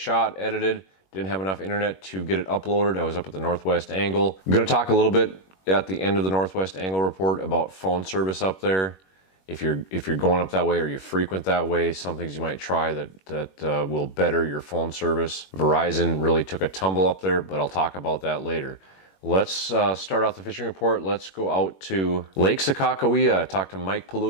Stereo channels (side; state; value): right; late; 21 ms